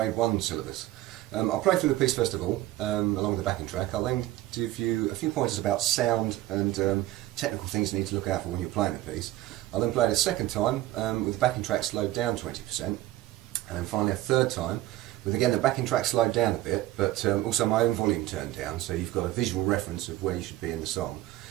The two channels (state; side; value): quieter; left; 15.8 dB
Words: 1 syllabus. I'll play through the piece first of all, along with the backing track. I'll then give you a few pointers about sound and technical things you need to look out for when you're playing the piece. I'll then play it a second time with the backing track slowed down 20%, and then finally a third time with again the backing track slowed down a bit, but also my own volume turned down, so you've got a visual reference of where you should be in the song,